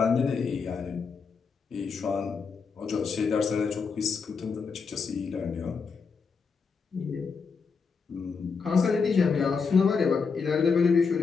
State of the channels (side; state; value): right; quieter; 5.3 dB